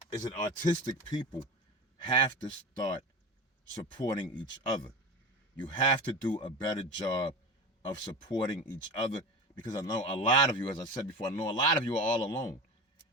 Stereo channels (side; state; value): both; normal; correlation 0.28